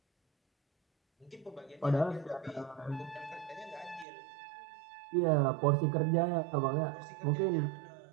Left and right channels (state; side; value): drops out; left; at 4.0 s